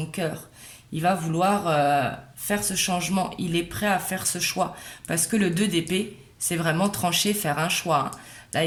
cœur. Il va vouloir faire ce changement. Il est prêt à faire ce choix. Parce que le 2 d'épée, c'est vraiment trancher, faire un choix. Hein. Là,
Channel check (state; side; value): identical; both; correlation 1.00